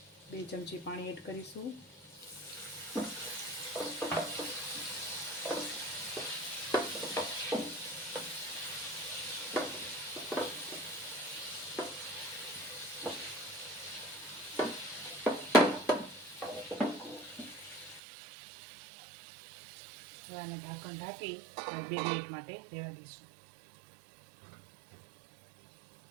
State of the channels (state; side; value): drops out; left; at 18.0 s